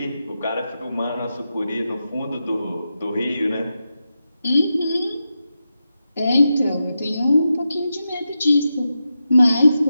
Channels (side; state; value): both; inverted; correlation -0.89